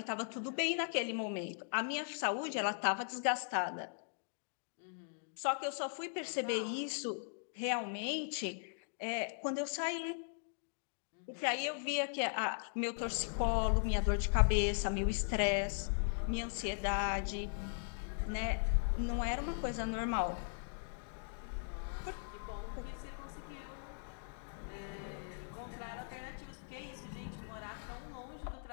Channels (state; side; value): silent; right; digital silence